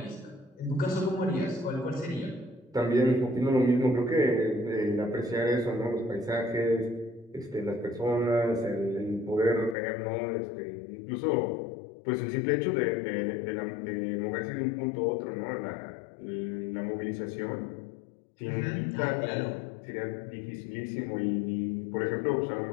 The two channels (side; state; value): right; drops out; at 9.8 s